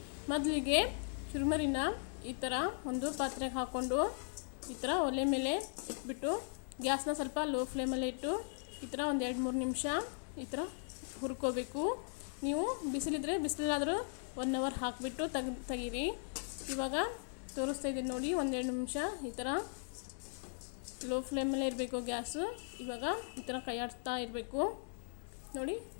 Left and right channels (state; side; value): silent; right; digital silence